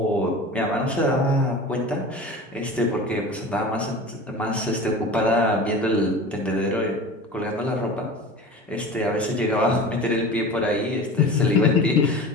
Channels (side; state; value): both; normal; correlation 0.35